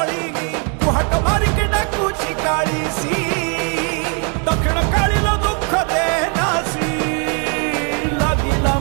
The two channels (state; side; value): quieter; left; 38.4 dB